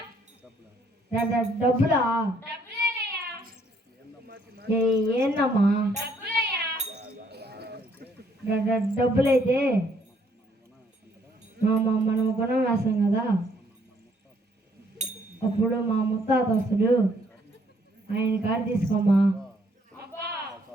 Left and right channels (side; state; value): both; normal; correlation 0.67